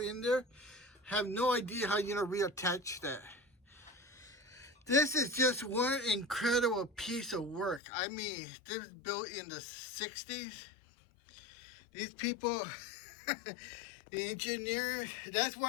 there. Have no idea how you're gonna reattach that. This is just one incredible piece of work. I mean, this was built in the 60s. These people, the engineers, that's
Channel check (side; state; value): right; drops out; at 7.8 s